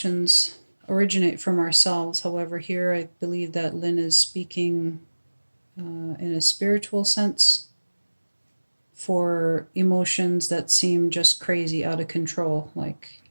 originate from ourselves. However, here I believe that Lynn is speaking in a spiritual sense for emotions that seem just crazy, out of control, like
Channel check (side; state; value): both; inverted; correlation -1.00